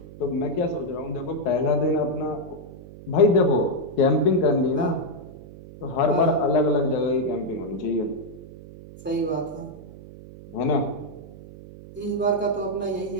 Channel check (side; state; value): right; noise; hum, 17 dB below the sound